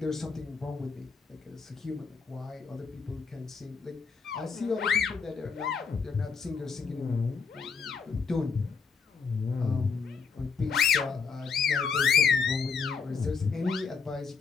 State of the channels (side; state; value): right; quieter; 5.4 dB